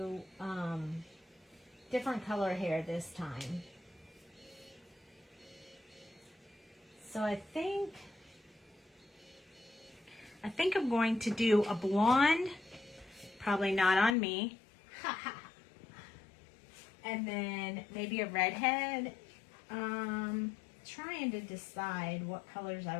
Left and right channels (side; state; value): right; drops out; at 14.2 s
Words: different color hair this time. So I think I'm going to do a blonde, probably not on me. And then maybe a redhead. Trying to decide what colors